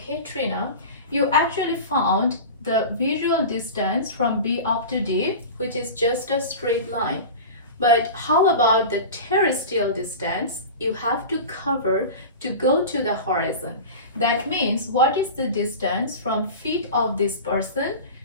Trina, you actually found the visual distance from B up to D, which is just a straight line. But how about the terrestrial distance you have to cover to go to the horizon? That means what is the distance from feet of this person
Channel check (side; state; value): both; inverted; correlation -0.31